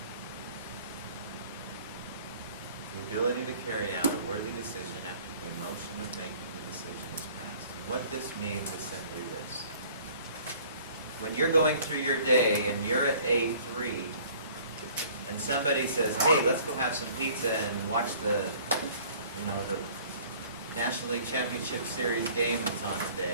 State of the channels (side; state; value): both; inverted; correlation -0.52